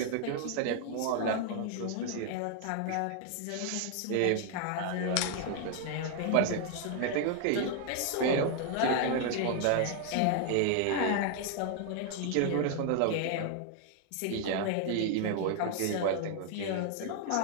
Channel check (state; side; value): different; both; correlation 0.00